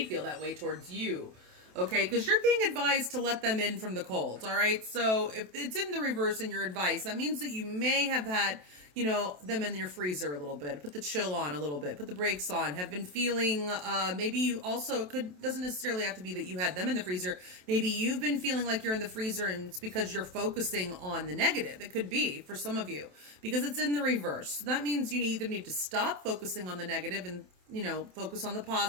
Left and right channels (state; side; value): late; left; 27 ms